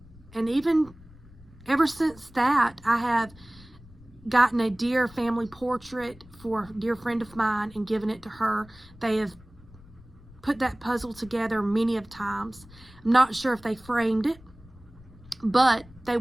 And even ever since that, I have gotten a dear family portrait for a dear friend of mine and given it to her. They have put that puzzle together many of times. I'm not sure if they framed it, but they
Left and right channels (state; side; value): noise; left; rumble, 22 dB below the sound